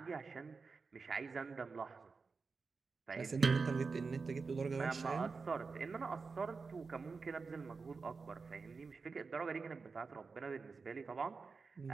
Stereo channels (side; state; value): left; quieter; 4.6 dB